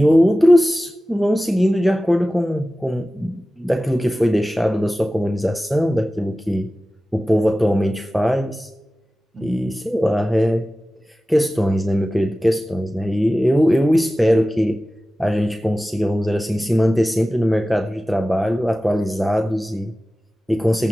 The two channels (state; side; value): normal; both; correlation 0.96